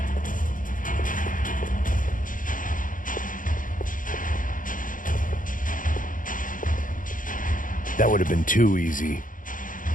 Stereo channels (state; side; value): late; right; 0.39 ms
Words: That would have been too easy.